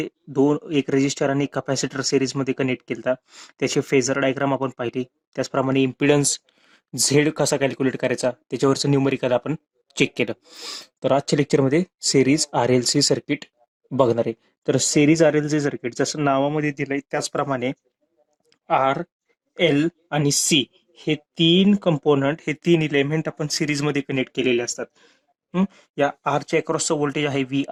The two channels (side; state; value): both; identical; correlation 1.00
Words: एक रेजिस्टर आणि कॅपॅसिटर सेरीजमध्ये कनेक्ट केला. त्याचे फेजर डायग्राम आपण पाहिली. त्याचप्रमाणे इम्पिडन्स झेड कसा कॅल्क्युलेट करायचा त्याच्यावरचं न्यूमरिकल आपण चेक केलं. तर आजच्या लेक्चरमध्ये series R L C circuit बघणार आहे. तर series R L C circuit जसं नावामध्ये दिलंय त्याचप्रमाणे आर एल आणि सी हे तीन कंपोनंट, हे तीन इलेमेंट आपण सिरीजमध्ये कनेक्ट केलेले असतात. या आरच्या अक्रॉसचं व्होल्टेज आहे व्ही